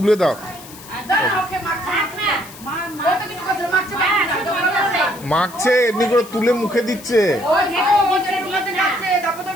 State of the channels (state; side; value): noise; left; hiss, 18 dB below the sound